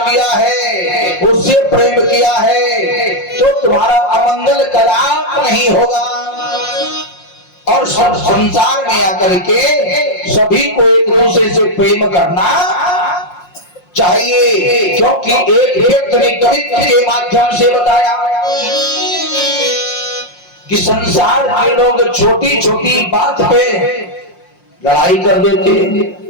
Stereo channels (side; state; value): right; late; 5.6 ms